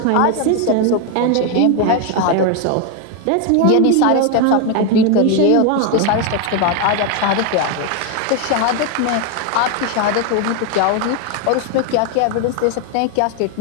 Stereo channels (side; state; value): both; different; correlation 0.01